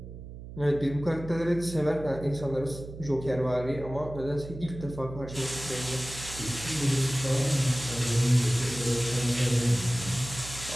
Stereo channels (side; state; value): right; noise; hum, 12 dB below the sound